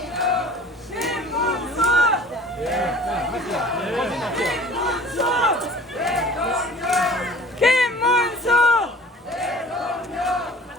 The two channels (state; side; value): normal; both; correlation 0.46